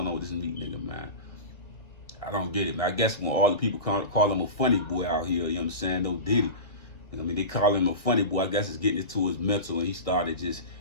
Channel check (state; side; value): late; right; 1.6 ms